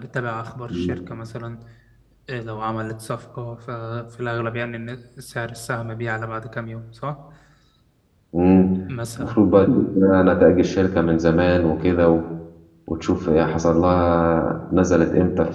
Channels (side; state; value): both; identical; correlation 1.00